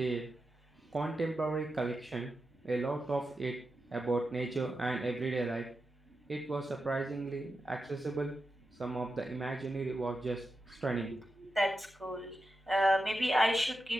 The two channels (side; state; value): both; normal; correlation 0.89